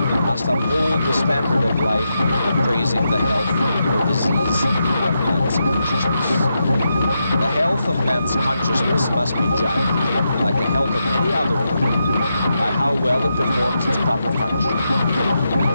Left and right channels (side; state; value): both; inverted; correlation -0.85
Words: must uphold the standard of life of praising the health or disease of man's consciousness. The health of man's consciousness must be judged, like the health of any other organ, by how well it performs its proper function. And